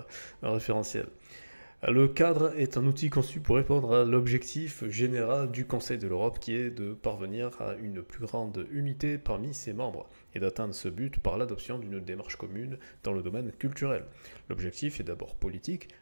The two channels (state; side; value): inverted; both; correlation -1.00